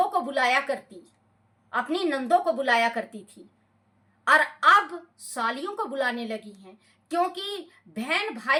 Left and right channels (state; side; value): identical; both; correlation 1.00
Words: को बुलाया करती, अपनी नंदों को बुलाया करती थी, और अब सालियों को बुलाने लगी हैं। क्योंकि बहन